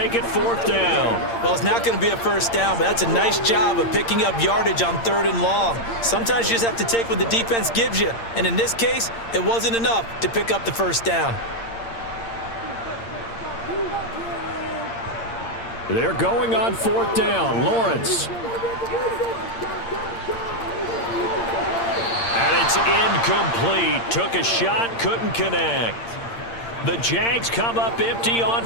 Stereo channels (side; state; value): right; late; 8.7 ms